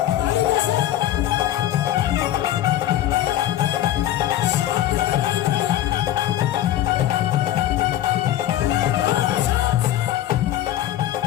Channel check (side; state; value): right; quieter; 12.7 dB